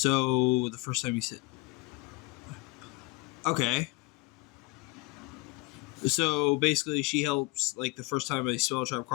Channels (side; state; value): right; quieter; 24.3 dB